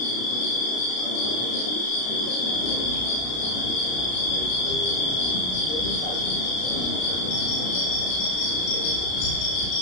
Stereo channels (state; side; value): late; right; 32 ms